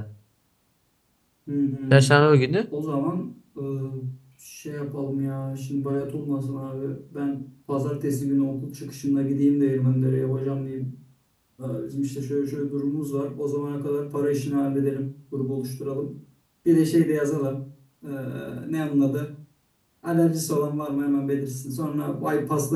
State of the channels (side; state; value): both; identical; correlation 1.00